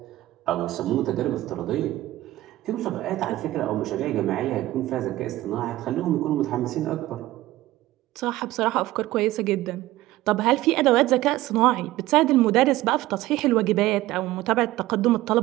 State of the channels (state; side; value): quieter; left; 16.4 dB